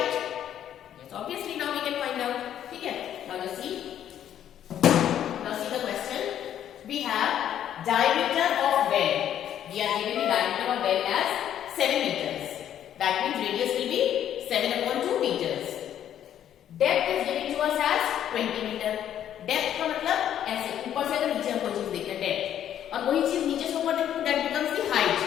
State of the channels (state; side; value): quieter; right; 10.4 dB